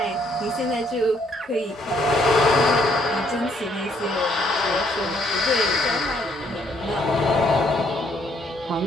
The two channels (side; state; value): both; normal; correlation 0.68